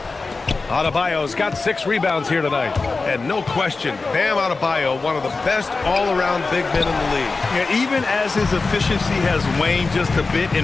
Adebayo's got 6 rebounds here tonight. And no question, Bam Adebayo, one of the best all-around big men in the league. Yeah, even as his efficiency has waned just a bit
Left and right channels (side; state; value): right; quieter; 3.9 dB